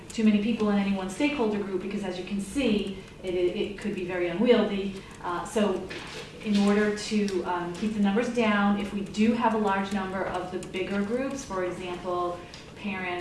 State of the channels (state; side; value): identical; both; correlation 1.00